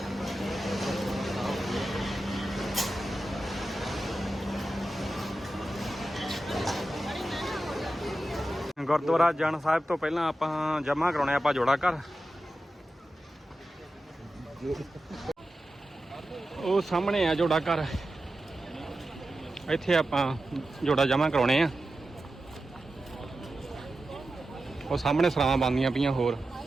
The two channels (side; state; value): both; normal; correlation 0.92